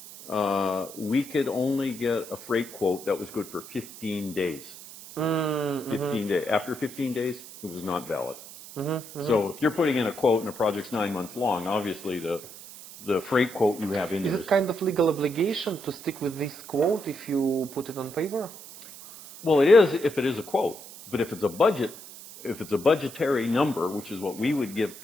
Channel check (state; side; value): noise; right; hiss, 15 dB below the sound